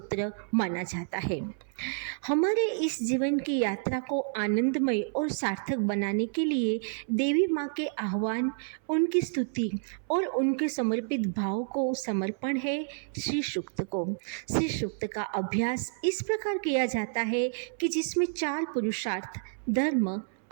माना जाता है। हमारे इस जीवन की यात्रा को आनंदमय और सार्थक बनाने के लिए देवी माँ के आह्वान, उनकी स्तुति और उनके समर्पित भाव को समर्पण है श्री सूक्त को। श्री सूक्त का अभ्यास इस प्रकार किया जाता है कि जिसमें 4 पुरुषार्थ धर्म,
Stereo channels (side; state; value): left; silent; 58 dB below the other